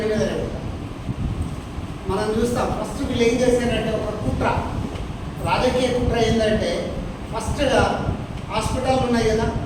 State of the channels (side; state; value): both; identical; correlation 1.00